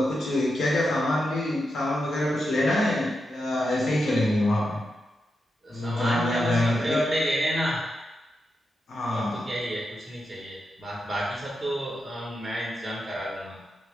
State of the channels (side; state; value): both; normal; correlation 0.86